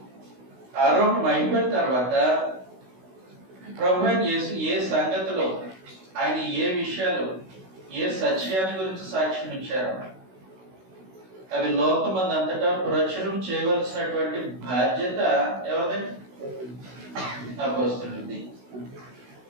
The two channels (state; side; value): late; left; 16 ms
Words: ఆరోహణం అయిపోయిన తర్వాత ప్రభు అయిన యేసు ఏ సంగతిలో ఆయన ఏ విషయాలు ఏ సత్యాన్ని గురించి సాక్ష్యం ఇచ్చారో అవి లోకమంది అంతటా ప్రచురం చేయవలసినటువంటి బాధ్యత ఎవరిది? అపోస్తలుడిది.